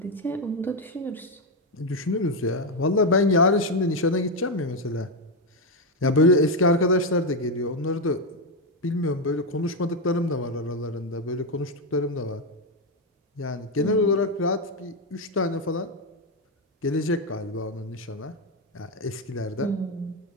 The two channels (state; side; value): normal; both; correlation 0.06